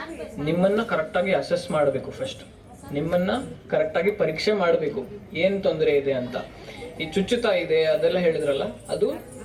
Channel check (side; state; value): both; identical; correlation 1.00